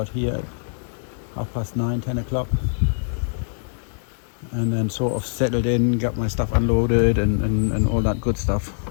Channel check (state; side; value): silent; right; digital silence